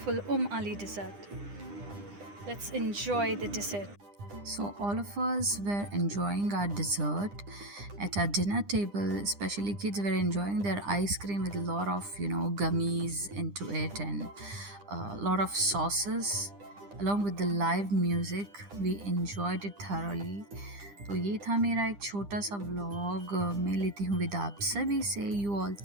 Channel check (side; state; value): left; late; 9.9 ms